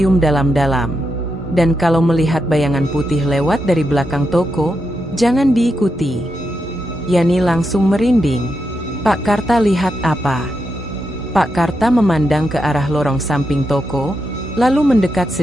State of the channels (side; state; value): both; normal; correlation 0.85